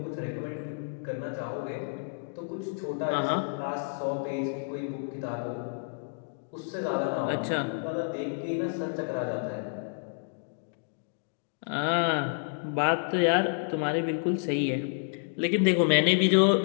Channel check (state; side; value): silent; right; digital silence